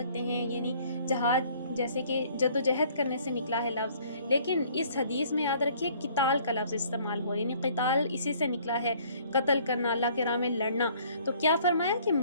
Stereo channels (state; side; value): inverted; both; correlation -0.58